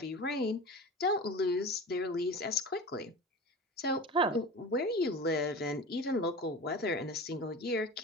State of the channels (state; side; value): normal; both; correlation 0.33